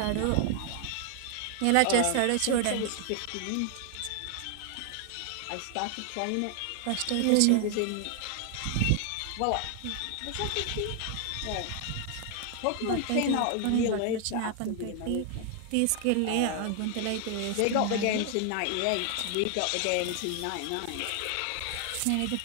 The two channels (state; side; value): different; both; correlation 0.00